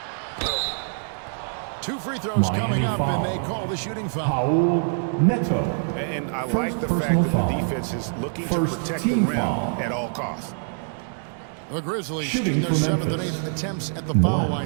2 free throws Miami coming up, foul. and they call the shooting foul. Paul Neto. And I First like the fact personal that foul. the defense is looking to First protect the team rim foul. at all costs. The Grizzlies Shooting shooting their for 7th and Memphis. 8th attempts at the foul 1,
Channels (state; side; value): silent; left; digital silence